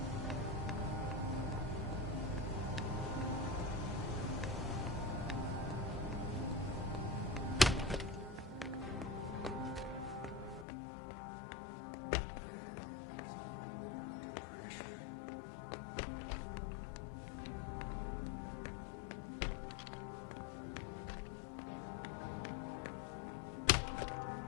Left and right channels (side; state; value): right; drops out; at 10.7 s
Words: If Favarone thinks I work better under pressure...